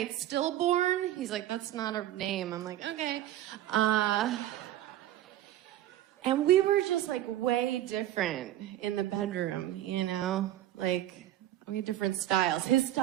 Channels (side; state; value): left; quieter; 13.3 dB